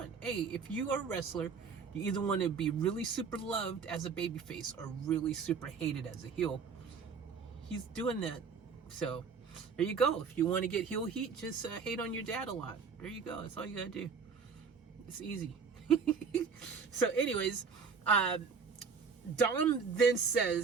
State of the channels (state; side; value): quieter; left; 5.6 dB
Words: Hey, if you are a wrestler, you either want to be really super loved as a babyface or really super hated as a heel. He's doing that. So there you go. If you want to get heel heat, just hate on your dad a lot. There you go. That's all you gotta do. It's easy. So anyways, Dom then